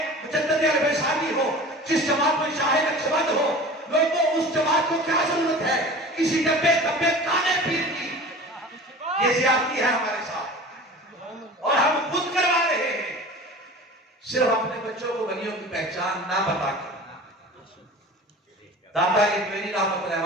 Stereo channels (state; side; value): normal; both; correlation 0.38